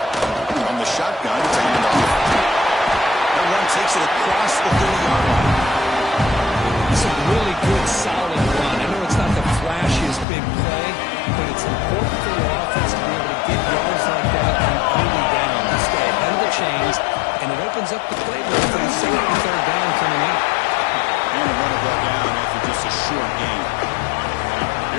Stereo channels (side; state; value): right; drops out; at 10.2 s